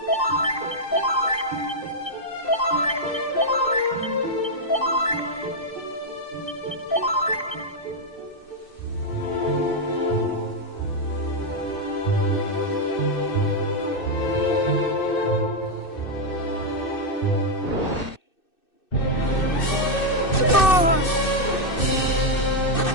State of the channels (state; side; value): late; right; 2.6 ms